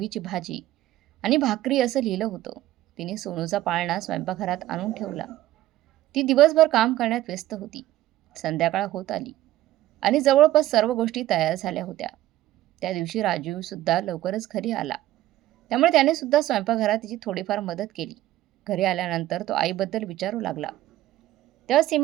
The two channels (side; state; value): left; quieter; 14.7 dB